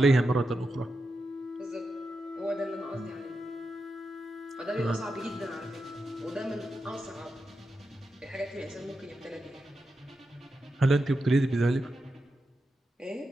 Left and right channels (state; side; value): normal; both; correlation 0.88